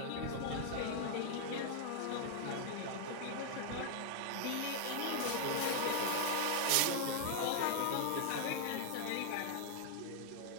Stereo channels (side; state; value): both; different; correlation 0.00